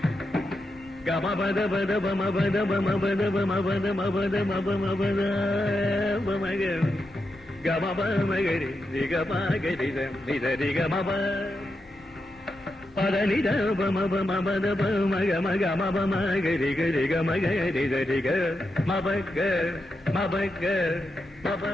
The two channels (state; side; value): normal; both; correlation 0.86